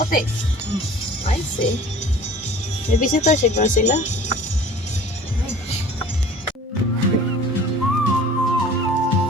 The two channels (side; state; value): both; normal; correlation 0.46